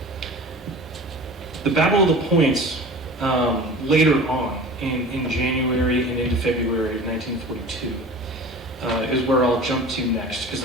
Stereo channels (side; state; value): both; normal; correlation 0.38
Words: The Battle of the Points, later on, in January and into February of 1942, is where I'll jump to next. Because